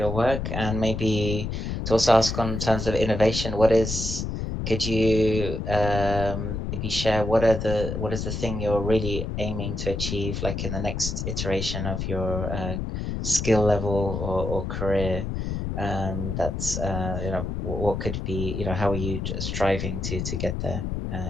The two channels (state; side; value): noise; left; rumble, 3 dB below the sound